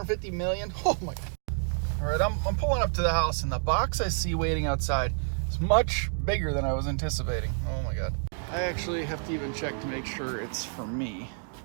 million? Oh my God. All right, I'm pulling up to the house, and the box I see waiting outside is much bigger than I was anticipating. Oh my God. I actually have to even check to make sure it's for me.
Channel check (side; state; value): left; silent; 59 dB below the other